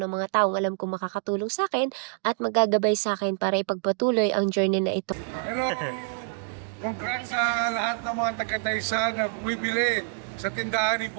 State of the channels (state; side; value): silent; left; digital silence